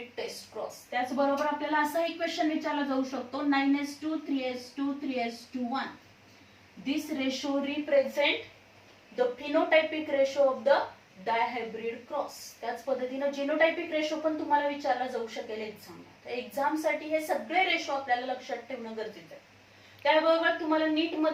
test cross. त्याचबरोबर आपल्याला असाही क्वेश्चन विचारला जाऊ शकतो 9:2, 3:2, 3:1. This ratio represent the phenotypic ratio of the dihybrid cross. त्याच पद्धतीने genotypic ratio पण तुम्हाला विचारला जाऊ शकेल एक्झामला. तर एक्झाम साठी हे सगळे रेशो आपल्याला लक्षात ठेवणं गरजेचं आहे. त्याबरोबर तुम्हाला नीट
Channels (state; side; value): identical; both; correlation 1.00